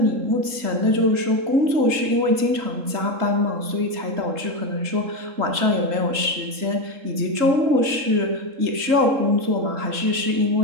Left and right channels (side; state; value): left; late; 3.7 ms